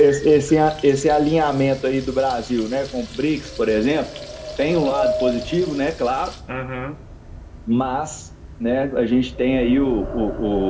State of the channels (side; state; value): both; identical; correlation 1.00